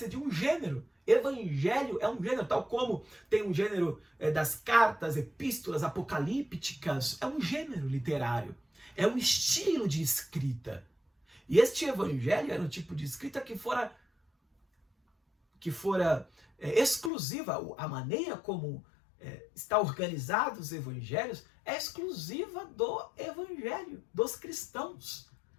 de um gênero. Evangelho é um gênero, tal como tem um gênero das cartas, epístolas apocalípticas, é um gênero literário, é um estilo de escrita. E este evangelho era um tipo de escrita que fora exclusiva, a maneira como está organizados os evangelhos é exclusiva do evangelho, dos cristãos,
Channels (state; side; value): drops out; right; at 17.1 s